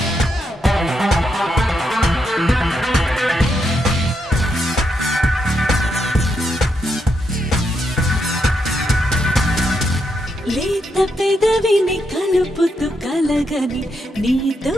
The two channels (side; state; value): both; normal; correlation 0.81